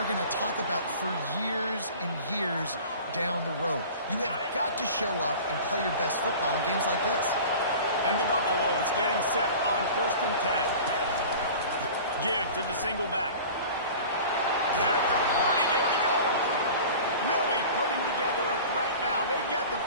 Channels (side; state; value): both; inverted; correlation -0.39